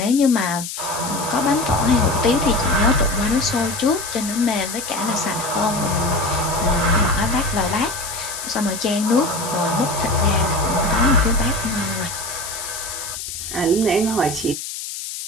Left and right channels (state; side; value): noise; left; hiss, 7 dB below the sound